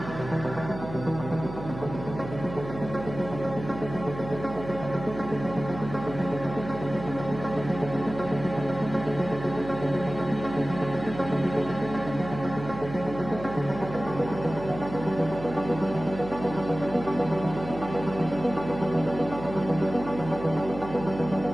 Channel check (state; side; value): noise; right; hum, 11 dB below the sound